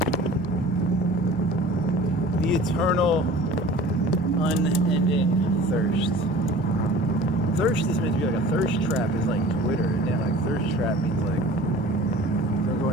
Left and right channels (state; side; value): normal; both; correlation 0.43